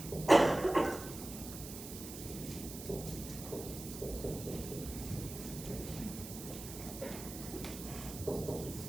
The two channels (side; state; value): right; noise; hiss, 11 dB below the sound